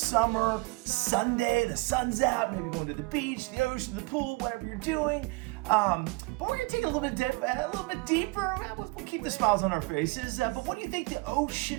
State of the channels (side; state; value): left; quieter; 26.3 dB